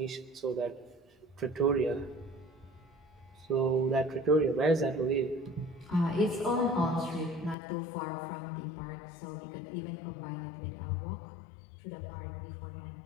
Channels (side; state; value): right; drops out; at 7.6 s